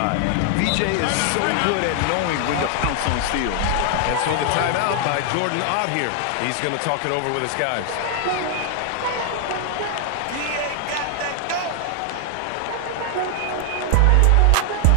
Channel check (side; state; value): both; different; correlation 0.00